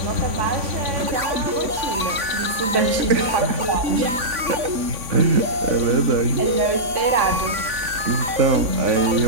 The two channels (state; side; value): late; left; 3.6 ms